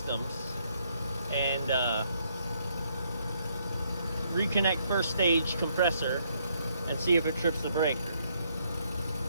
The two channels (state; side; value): inverted; both; correlation -0.72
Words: and reconnect first stage compressor and see if it trips the breaker.